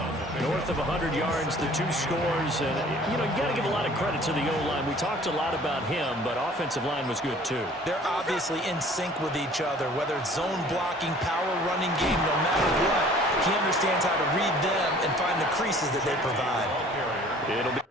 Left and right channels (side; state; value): both; normal; correlation 0.51